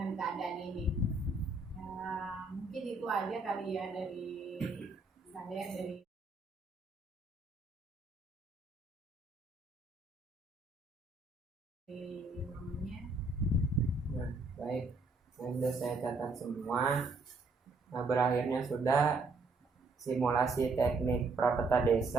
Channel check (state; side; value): quieter; left; 3.5 dB